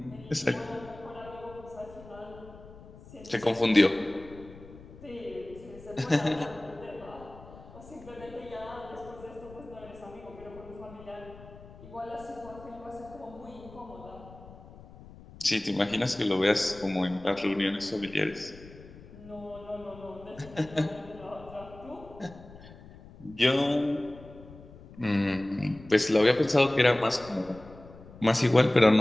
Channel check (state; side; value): noise; left; rumble, 19 dB below the sound